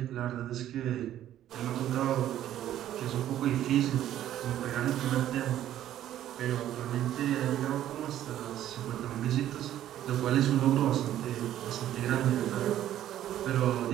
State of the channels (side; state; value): left; quieter; 12.1 dB